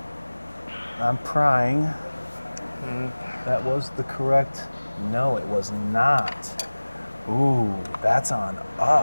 I'm prying. That was the correct, no, it was not. Ooh, that's on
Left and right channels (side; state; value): both; inverted; correlation -1.00